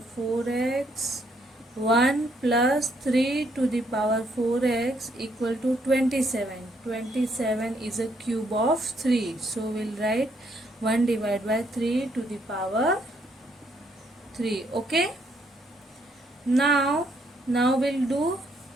4x 1 plus 3 to the power 4x equal to 27. 27 is a cube of 3. So we'll write 1 divided by 3 to the power 3. Okay. Now we'll do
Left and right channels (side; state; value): both; normal; correlation 0.71